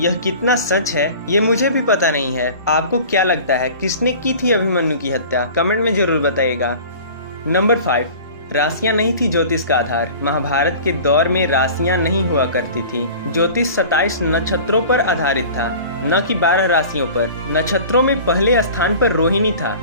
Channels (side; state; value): both; inverted; correlation -0.41